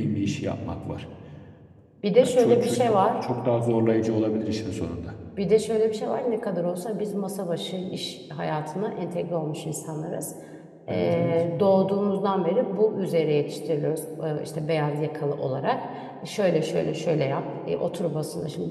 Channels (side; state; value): both; identical; correlation 1.00